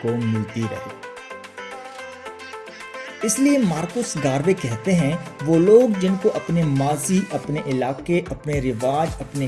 کو ملتی رہے۔ اس لیے مارکوس گاروے کہتے ہیں وہ لوگ جن کو اپنے ماضی، اپنے علاقے، اپنے رواج، اپنے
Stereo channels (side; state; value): both; identical; correlation 1.00